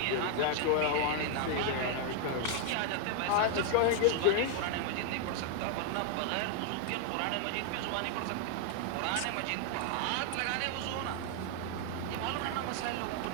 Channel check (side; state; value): both; different; correlation 0.00